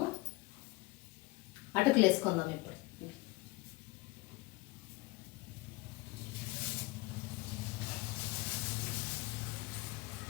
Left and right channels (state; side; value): quieter; right; 22.7 dB